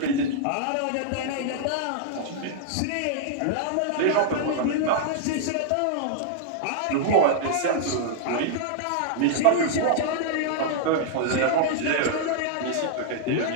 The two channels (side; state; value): both; different; correlation -0.01